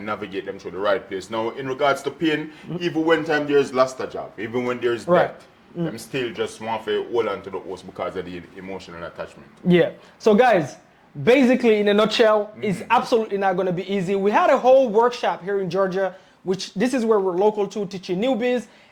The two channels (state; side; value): identical; both; correlation 1.00